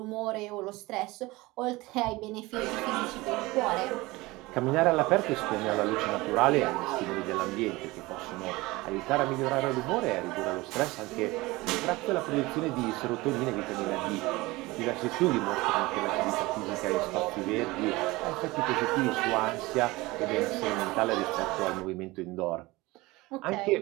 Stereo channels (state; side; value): quieter; left; 21.2 dB